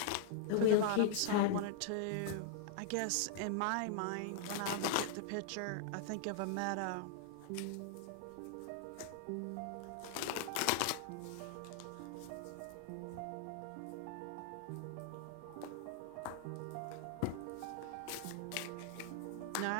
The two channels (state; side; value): different; both; correlation -0.01